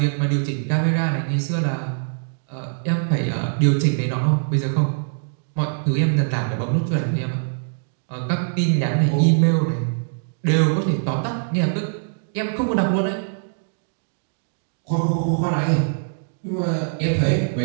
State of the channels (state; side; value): silent; left; digital silence